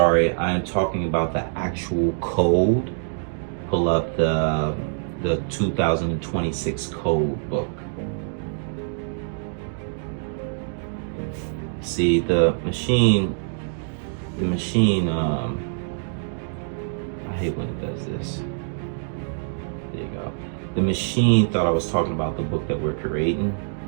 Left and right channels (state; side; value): silent; left; digital silence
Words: I am talking about the actual code. Pull up the 2026 code book. See, the machine, I hate when it does this. There you go. The machine thought I was talking about the book that we're creating,